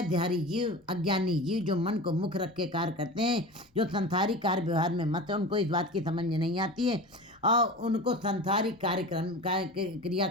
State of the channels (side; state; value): both; normal; correlation 0.32